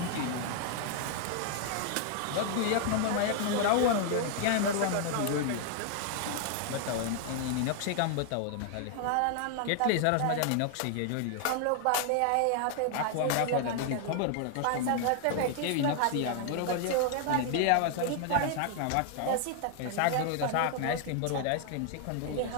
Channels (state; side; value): different; both; correlation 0.00